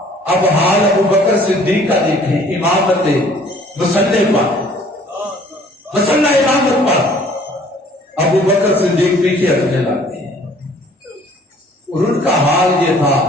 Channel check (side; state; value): both; normal; correlation 0.55